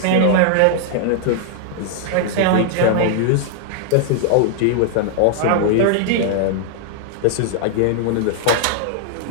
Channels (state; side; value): different; both; correlation 0.00